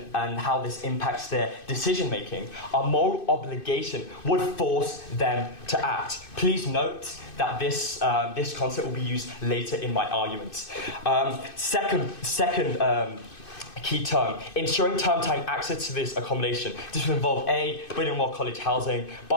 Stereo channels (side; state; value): right; late; 2.6 ms